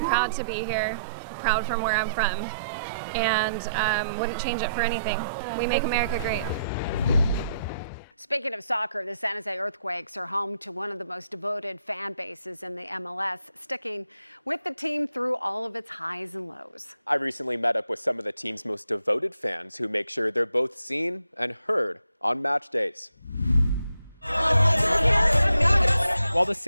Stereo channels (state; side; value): inverted; both; correlation -0.76